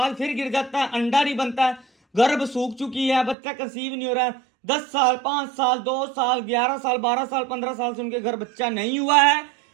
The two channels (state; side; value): drops out; left; at 3.4 s